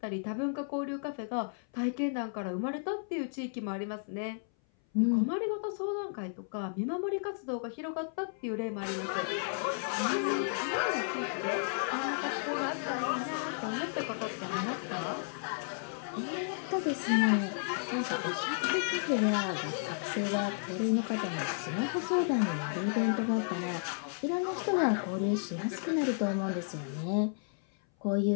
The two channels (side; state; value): right; silent; 56 dB below the other